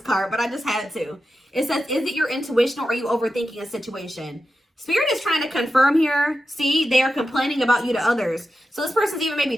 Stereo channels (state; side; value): normal; both; correlation 0.90